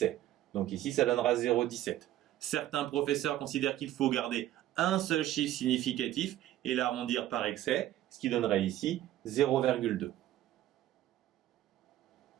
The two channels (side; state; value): left; quieter; 13.5 dB